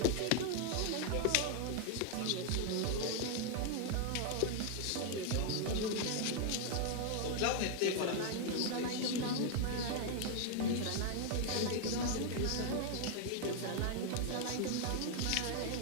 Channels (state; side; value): different; both; correlation 0.00